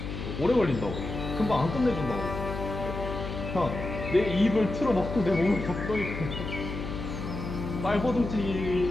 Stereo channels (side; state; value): left; noise; hum, 6 dB below the sound